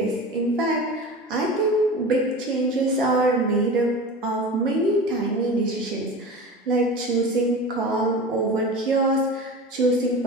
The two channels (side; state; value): both; normal; correlation 0.32